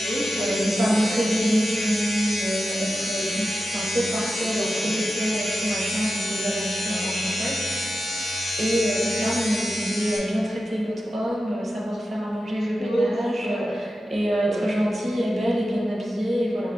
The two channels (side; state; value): both; normal; correlation 0.91